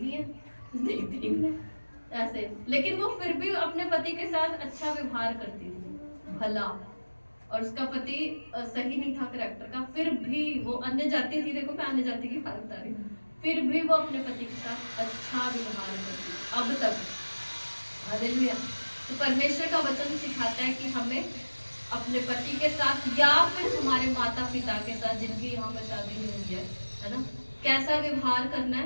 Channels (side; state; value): both; inverted; correlation -1.00